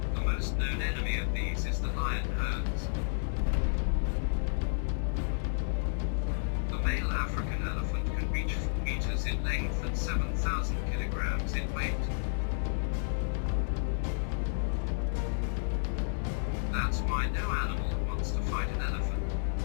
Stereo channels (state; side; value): silent; right; digital silence